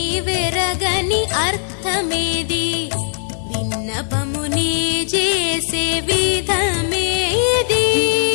అర్థమేది విన్నపముని చేసే విధమేది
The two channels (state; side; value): silent; right; digital silence